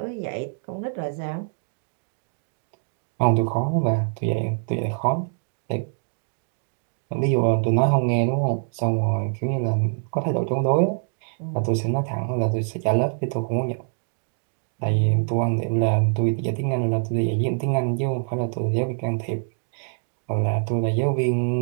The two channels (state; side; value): silent; left; digital silence